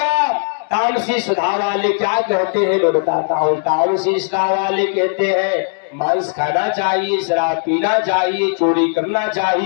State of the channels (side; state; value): right; silent; digital silence